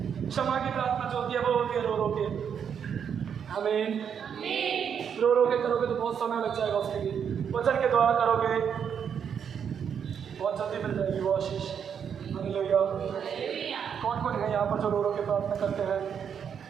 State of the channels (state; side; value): quieter; left; 7.7 dB